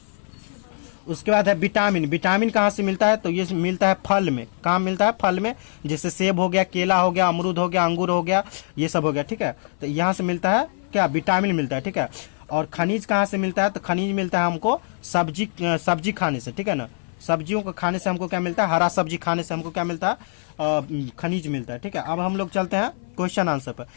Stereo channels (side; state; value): right; silent; 57 dB below the other